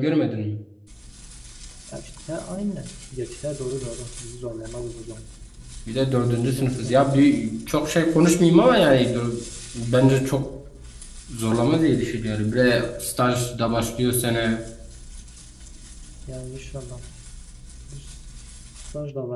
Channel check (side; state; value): both; identical; correlation 1.00